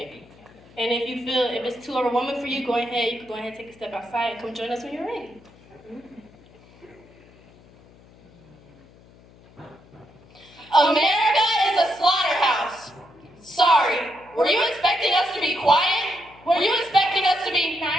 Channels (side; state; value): left; noise; hum, 26 dB below the sound